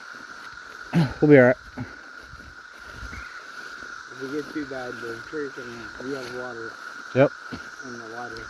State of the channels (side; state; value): both; identical; correlation 1.00